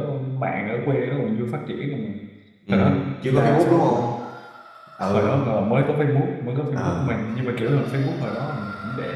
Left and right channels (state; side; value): identical; both; correlation 1.00